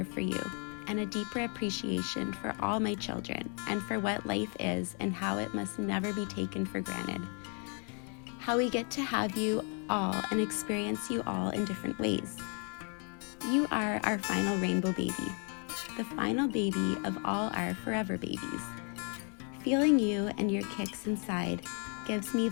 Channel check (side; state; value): right; quieter; 39.3 dB